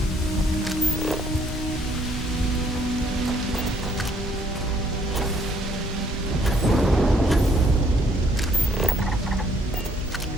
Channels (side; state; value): both; normal; correlation 0.66